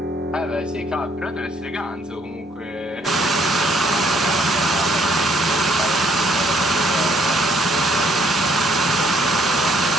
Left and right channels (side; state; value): both; normal; correlation 0.66